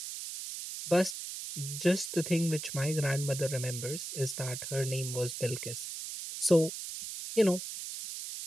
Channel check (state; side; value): noise; right; hiss, 7 dB below the sound